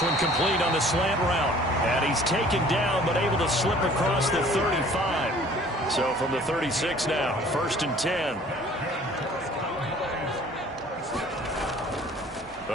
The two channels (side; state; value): both; normal; correlation 0.52